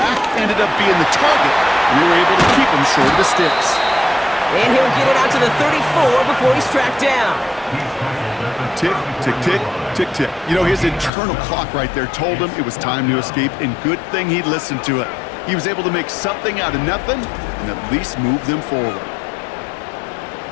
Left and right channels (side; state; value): right; drops out; at 11.1 s